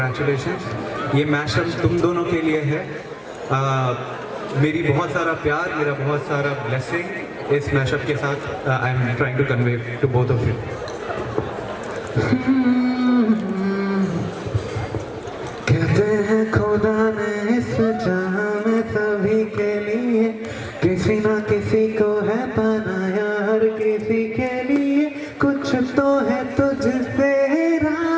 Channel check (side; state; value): both; identical; correlation 1.00